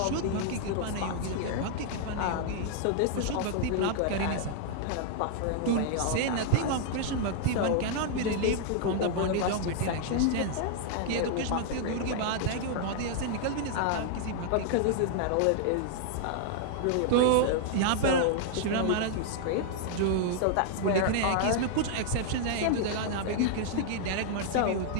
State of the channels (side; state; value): both; different; correlation -0.01